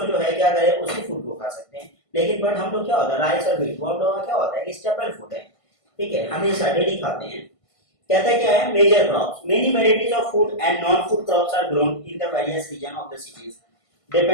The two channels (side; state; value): right; late; 1.5 ms